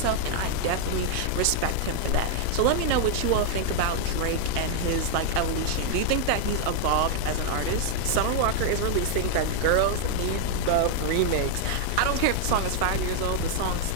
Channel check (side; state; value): both; different; correlation 0.00